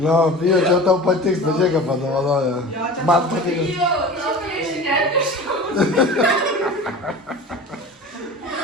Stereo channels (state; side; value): normal; both; correlation 0.36